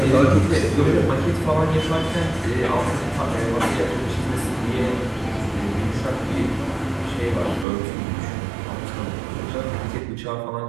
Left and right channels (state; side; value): drops out; left; at 7.7 s